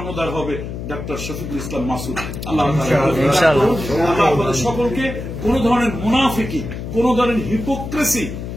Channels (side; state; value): left; noise; hum, 7 dB below the sound